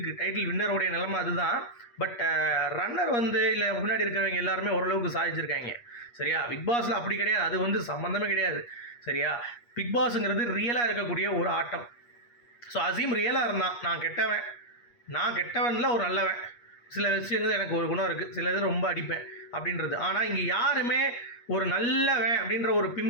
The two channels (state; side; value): late; right; 8.4 ms